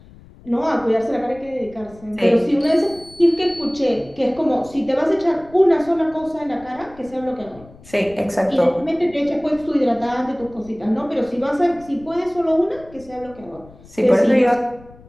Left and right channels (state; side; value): noise; left; rumble, 22 dB below the sound